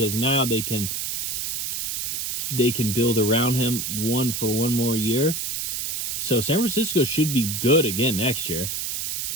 now they can build around him for one more year. So San Francisco should be good again next year.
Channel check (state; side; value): noise; right; hiss, 2 dB below the sound